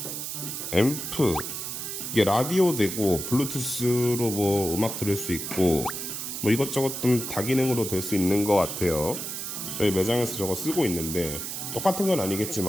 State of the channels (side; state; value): right; noise; hiss, 5 dB below the sound